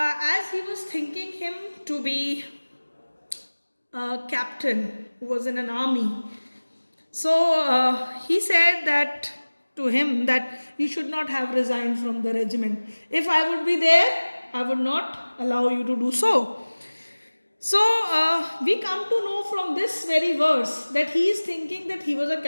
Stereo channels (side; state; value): both; inverted; correlation -1.00